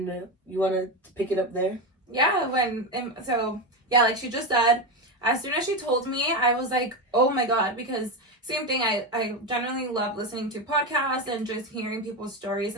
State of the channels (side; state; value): both; normal; correlation 0.14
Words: you want to pick it up there? Yeah, like she just said, as soon as she told me, I was like, oh my god, because same thing, I generally love listening to podcasts and just hearing people's stories